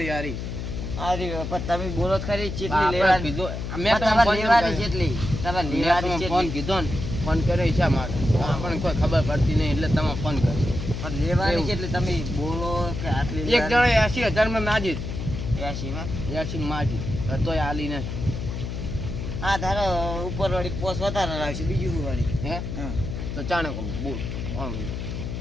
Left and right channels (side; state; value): left; noise; hum, 5 dB below the sound